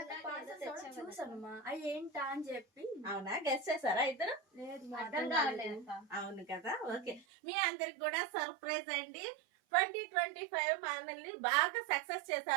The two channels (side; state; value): left; drops out; at 7.2 s